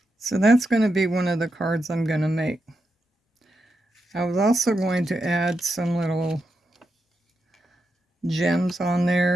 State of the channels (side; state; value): both; normal; correlation 0.86